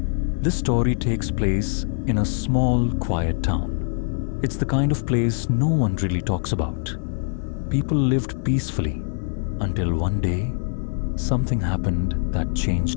This story takes place in a small, quiet town. It's the kind of place no one really talks about. People lived peacefully until one day, something happened that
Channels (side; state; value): right; silent; digital silence